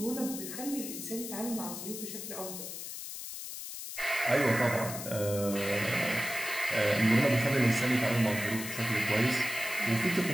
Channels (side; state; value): left; noise; hiss, 8 dB below the sound